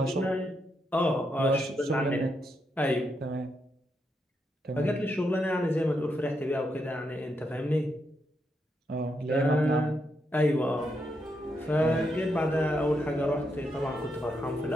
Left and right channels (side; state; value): both; normal; correlation 0.81